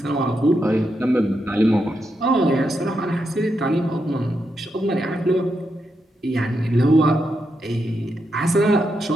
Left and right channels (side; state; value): both; normal; correlation 0.83